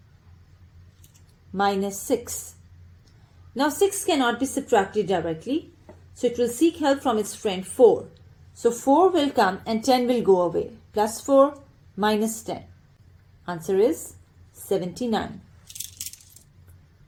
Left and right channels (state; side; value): identical; both; correlation 1.00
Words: minus 6. Now 6 cannot be subtracted directly, so it will seek help from its friend 4. So 4 will come and 10 will go away. Plus 4 minus 10. Answer is 79.